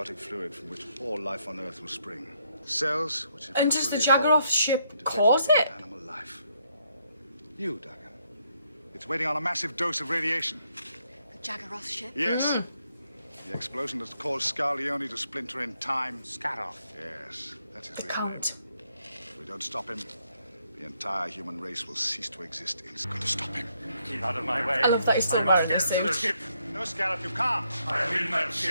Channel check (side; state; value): both; inverted; correlation -0.74